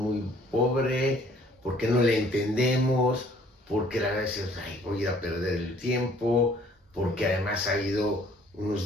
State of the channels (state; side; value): normal; both; correlation 0.58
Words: pobre, porque no le entendemos, porque la verdad es, voy a ir a perder el tiempo, porque además ha habido unos